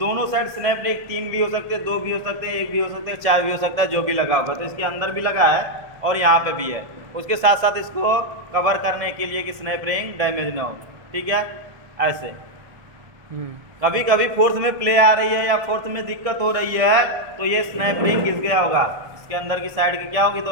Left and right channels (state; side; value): late; left; 1.7 ms